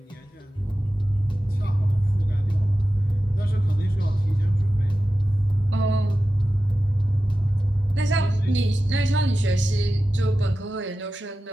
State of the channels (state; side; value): normal; both; correlation 0.94